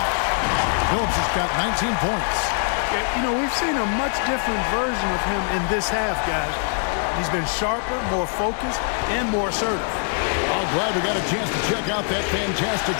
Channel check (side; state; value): right; silent; 55 dB below the other